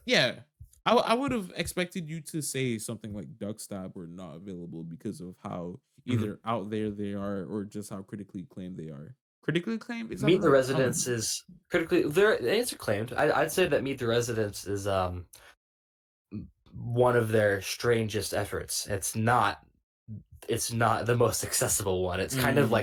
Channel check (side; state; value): both; identical; correlation 1.00